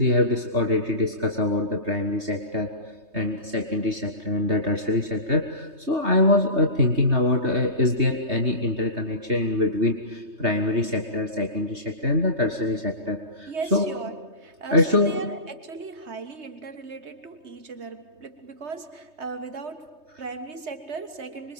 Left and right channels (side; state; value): left; late; 3.2 ms